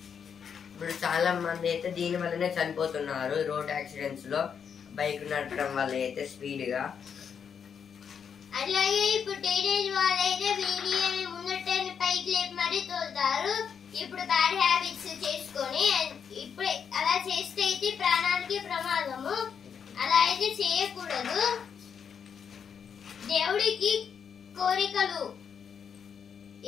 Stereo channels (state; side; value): quieter; right; 7.2 dB